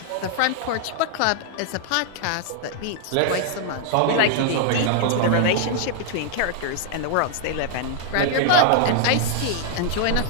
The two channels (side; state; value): both; different; correlation 0.00